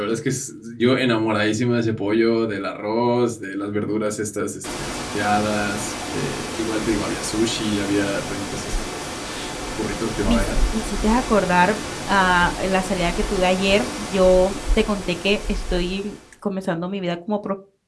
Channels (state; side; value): identical; both; correlation 1.00